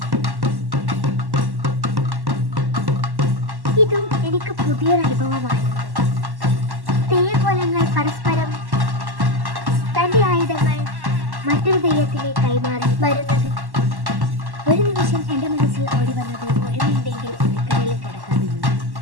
ഇതും എനിക്ക് പുതിയൊരു അനുഭവമായിരുന്നു. തെയ്യക്കോലങ്ങൾ പരസ്പരം തന്റെ ആയുധങ്ങൾ മറ്റൊരു തെയ്യത്തിലെ കൈമാറി വരുന്നത്. ഒരു നിമിഷം എൻ്റെ മനസ്സിൽ ഓടി വന്നത് ഒഴിവുണ്ടെങ്കിൽ അടുക്കളയിൽ കിടക്കാമെന്ന്.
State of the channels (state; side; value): late; left; 1.1 ms